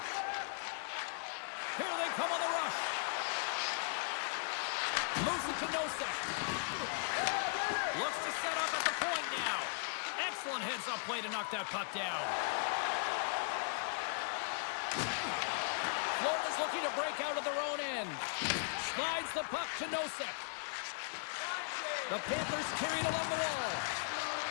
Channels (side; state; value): right; silent; digital silence